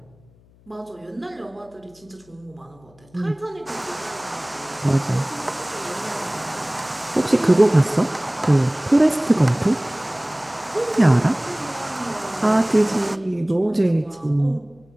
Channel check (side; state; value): left; noise; hum, 29 dB below the sound